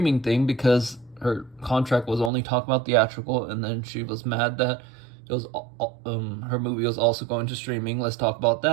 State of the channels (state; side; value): drops out; left; at 2.3 s